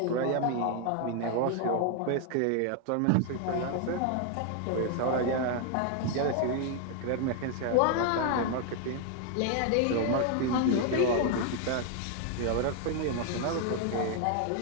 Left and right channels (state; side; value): different; both; correlation 0.00